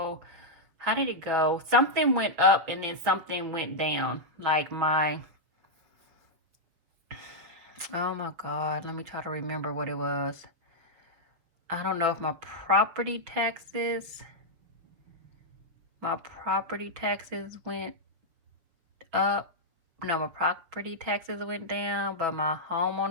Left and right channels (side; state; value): left; late; 6.4 ms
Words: how did it go? Something went up and then something went down. Like my, oh my God, let me try to remember what it was. I don't know if my property taxes went up. No, my property taxes went down, but my